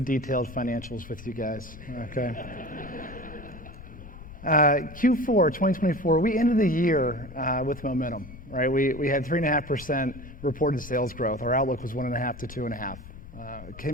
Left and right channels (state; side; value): noise; left; rumble, 15 dB below the sound